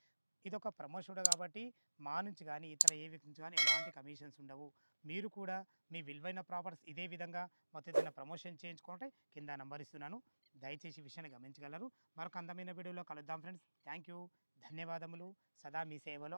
ఇది ఒక ప్రమోషన్ కాబట్టి మా నుంచి కానీ ఇతర ఏ వ్యక్తి నుంచి కానీ ఎలాంటి కమిషన్స్ ఉండవు. మీరు కూడా మీ విలువైన ప్రాపర్టీస్ ఇదే విధంగా మొత్తం ఏదైనా ప్రమోషన్ చేయించుకుంటే కింద నంబర్ ఇస్తున్నాను, దయచేసి విషయాన్ని గమనించగలరు. మరొక అందమైన వీడియోలో కలుద్దాం ఫ్రెండ్స్. థ్యాంక్ యూ, ధన్యవాదములు. సదా మీ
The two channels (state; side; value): inverted; both; correlation -1.00